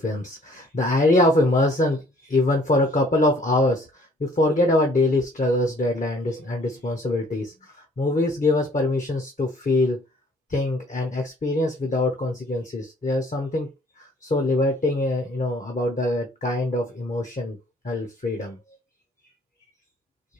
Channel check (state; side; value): normal; both; correlation 0.58